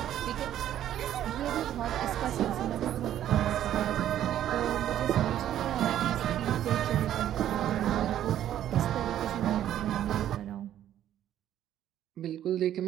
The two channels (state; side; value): quieter; left; 11.5 dB